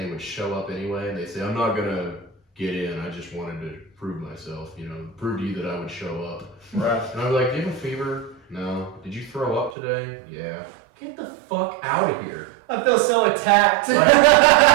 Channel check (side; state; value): left; drops out; at 9.8 s